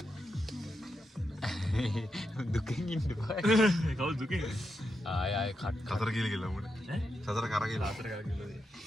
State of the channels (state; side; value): normal; both; correlation 0.85